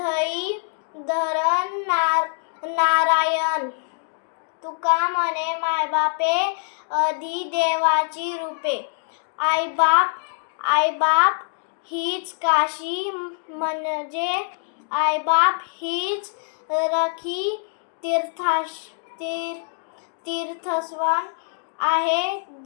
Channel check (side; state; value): right; silent; digital silence